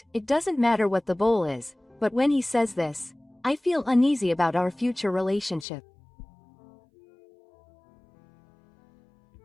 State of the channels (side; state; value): right; drops out; at 5.7 s